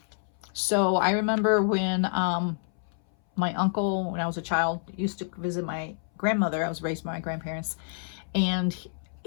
So I remember when my uncle, when I was a child, used to visit my grandmother. I was raised by my grandparents. And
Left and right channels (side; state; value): right; silent; 59 dB below the other